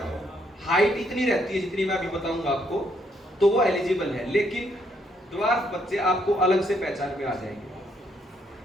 हाइट इतनी रहती है जितनी मैं अभी बताऊंगा आपको, तो वो एलिजिबल है। लेकिन ड्वार्फ बच्चे आपको अलग से पहचान में आ जाएंगे।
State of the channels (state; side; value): normal; both; correlation 0.73